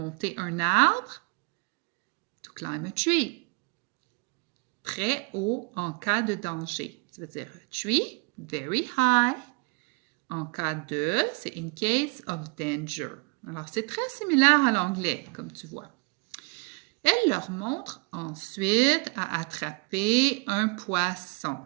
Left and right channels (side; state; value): left; quieter; 31.5 dB